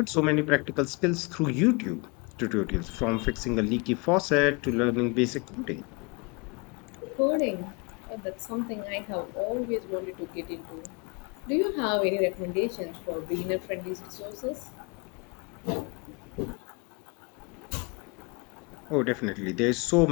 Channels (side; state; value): right; quieter; 30.1 dB